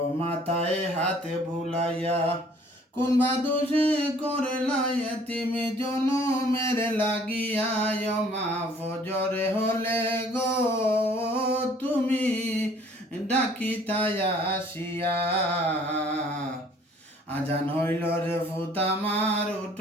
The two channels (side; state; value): both; normal; correlation 0.56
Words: মাথায় হাত বুলাইয়া কোন বাদুষে করলা এতিম জনমের লাগিয়া মা ফজরে হলে গো তুমি ডাকিতাই আসিয়া আজান হইল রে ফুত আমার